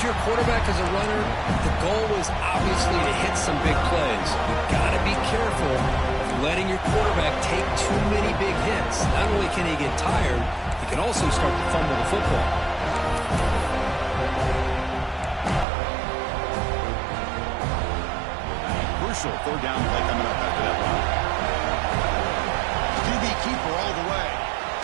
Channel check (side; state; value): left; drops out; at 15.7 s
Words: your quarterback as a runner, the goal is obviously to hit some big plays. You've got to be careful of letting your quarterback take too many big hits. Not only can he get tired, he can also start to fumble the football. Crucial third down play coming up after that run. QB keeper all the way.